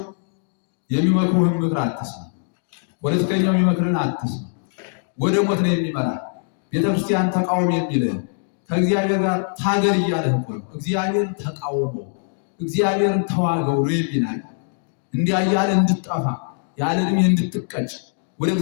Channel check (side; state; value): right; silent; digital silence